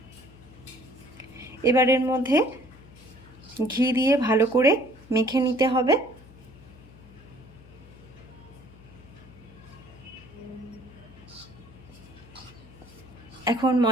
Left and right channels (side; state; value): left; noise; hum, 22 dB below the sound